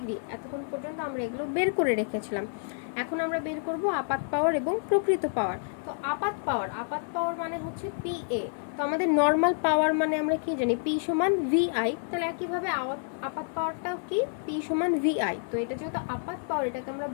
এতক্ষণ পর্যন্ত আমরা এগুলো বের করে রেখেছিলাম। এখন আমরা বের করব আপাত পাওয়ার এবং প্রকৃত পাওয়ার। তো আপাত পাওয়ার মানে হচ্ছে পিএ। তো আমাদের নর্মাল পাওয়ার মানে আমরা কি জানি পি সমান ভিআই, তাহলে একইভাবে আপাত পাওয়ারটাও কি পি সমান ভিআই। তো এটা যেহেতু আপাত পাওয়ার, এটাকে আমরা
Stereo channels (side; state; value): right; silent; 59 dB below the other